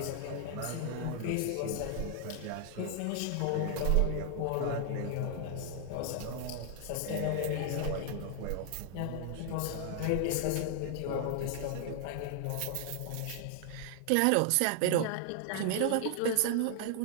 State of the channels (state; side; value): different; both; correlation 0.00